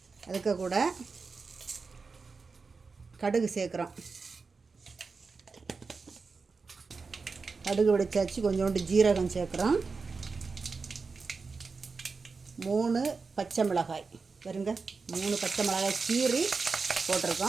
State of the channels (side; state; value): left; quieter; 4.6 dB